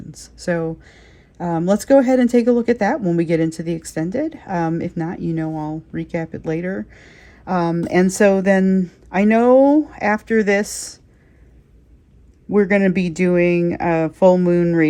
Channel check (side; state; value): both; identical; correlation 1.00